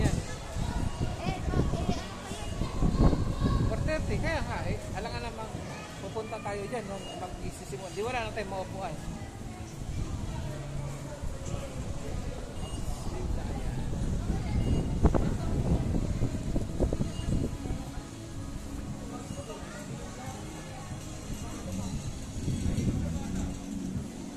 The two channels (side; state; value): both; identical; correlation 1.00